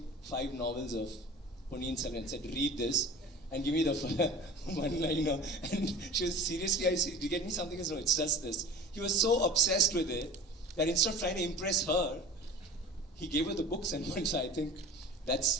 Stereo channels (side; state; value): both; normal; correlation 0.40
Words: 5 novels of Ponniyin Selvan and said, read this, and give me the one-liner. And she was, seriously, I said, do you get me something? He said, no, it's just this. He was so obsessed with it, that instead of trying to impress her, he gave her the books, and once I think